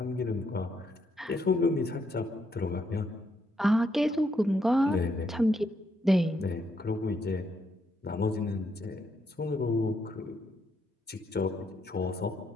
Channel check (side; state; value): both; normal; correlation 0.76